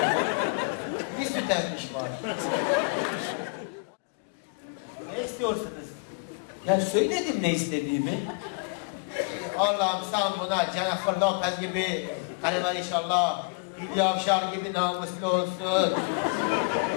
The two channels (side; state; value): right; quieter; 37.2 dB